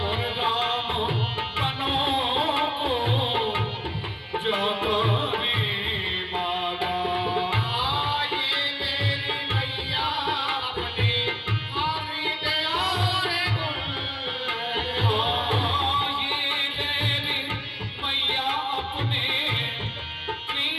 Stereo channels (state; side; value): identical; both; correlation 1.00